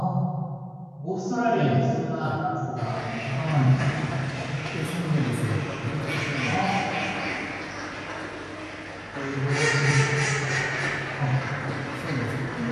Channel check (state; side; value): identical; both; correlation 1.00